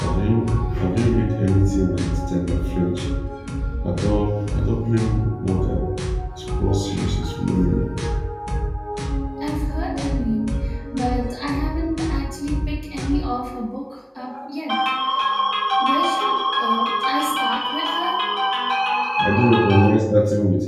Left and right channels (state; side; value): identical; both; correlation 1.00